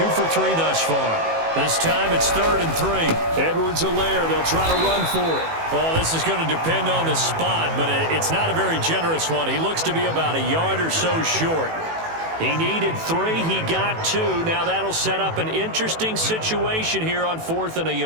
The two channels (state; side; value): late; left; 18 ms